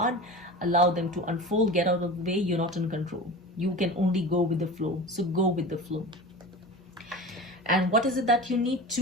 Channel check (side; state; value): both; normal; correlation 0.33